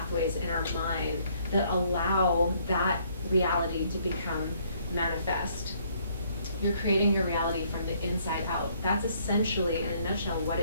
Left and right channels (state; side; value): inverted; both; correlation -0.65